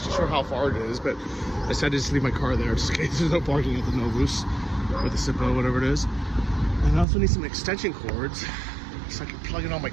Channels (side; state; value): left; drops out; at 7.1 s